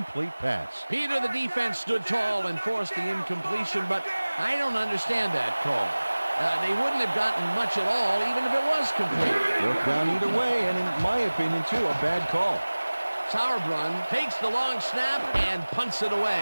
pass. Peter, the defense stood tall and forced the incompletion, but I don't understand that call. They wouldn't have gotten much at all, even if it was complete. Worked down either way, and in my opinion, too, a bad call. Sauerbrunn takes the long snap and punts it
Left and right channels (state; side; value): inverted; both; correlation -1.00